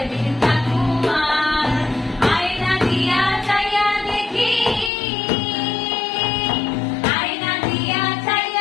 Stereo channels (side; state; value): right; drops out; at 4.9 s